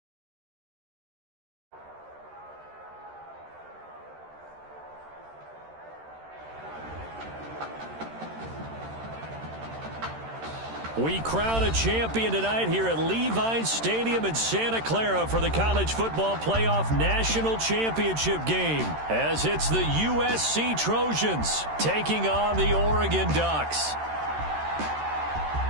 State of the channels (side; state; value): left; late; 13 ms